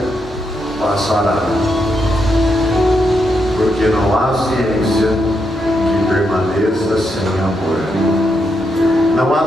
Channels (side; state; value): both; normal; correlation 0.81